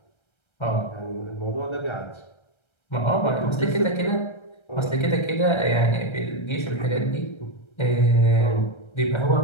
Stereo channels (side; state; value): right; late; 1.3 ms